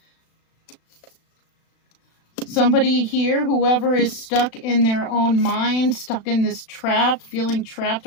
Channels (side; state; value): right; late; 36 ms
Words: Somebody here, whoever is stuck in their own mind, stuck in this trap, feeling trapped